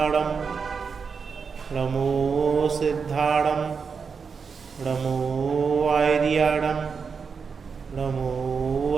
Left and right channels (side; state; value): left; quieter; 5.6 dB